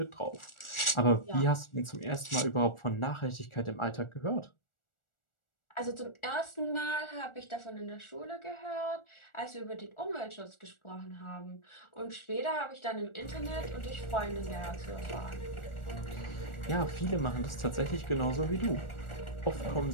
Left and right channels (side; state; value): right; late; 1.4 ms